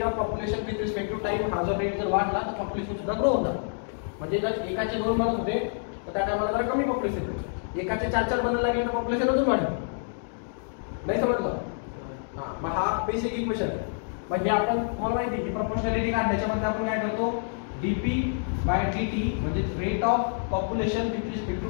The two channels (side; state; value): right; silent; digital silence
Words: of population with respect to time, हा जो रेट जर वाढला तर पॉप्युलेशन सुद्धा ग्रो होणार. म्हणजे जर एकाचे 2 बनत होते तर त्या टायमाला जरा कमी पॉप्युलेशन होते, एकाचे 4-4 बनायला लागले तर पॉप्युलेशन अजून वाढेल. नाही समजलं? हा, मग हा बेसिक इक्वेशन आहे. मग हे आपण तुम्हाला माहिती आहे की प्रोपोर्शनॅलिटी काढण्याच्यामध्ये आपण काय करतो, dp/dt म्हणजे rate of population with respect to